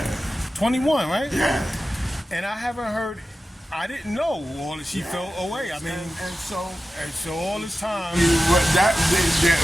21, right? Yeah. And I haven't heard, I didn't know all that she felt away. I mean, and so all this time. That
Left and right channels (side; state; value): both; normal; correlation 0.93